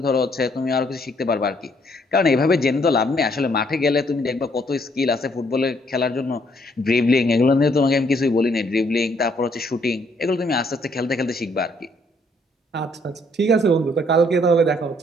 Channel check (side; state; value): both; normal; correlation 0.68